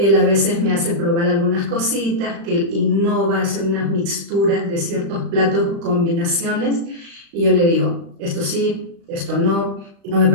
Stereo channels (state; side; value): late; left; 35 ms